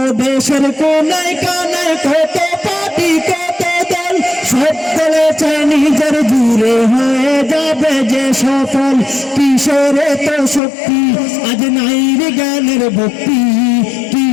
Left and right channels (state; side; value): drops out; right; at 10.6 s